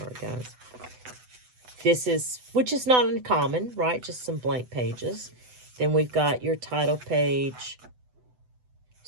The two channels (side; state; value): left; late; 8.0 ms